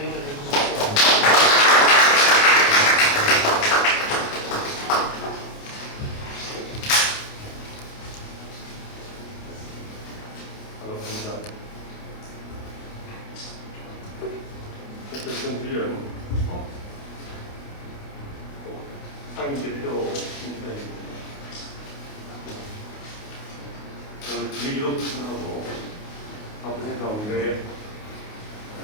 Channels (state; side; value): late; right; 28 ms